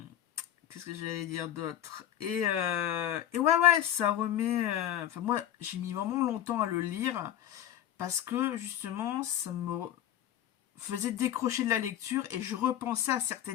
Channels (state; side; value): quieter; right; 11.4 dB